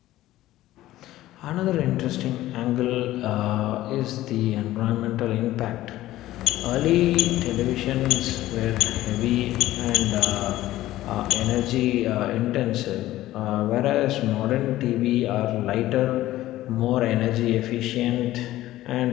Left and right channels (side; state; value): right; quieter; 15.4 dB